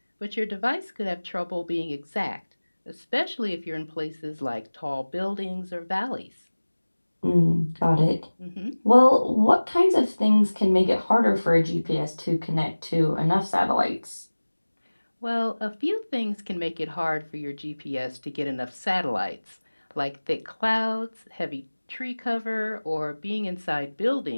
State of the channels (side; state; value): both; inverted; correlation -1.00